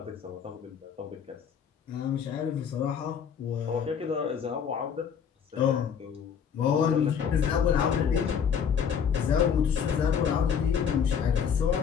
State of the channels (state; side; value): quieter; right; 7.4 dB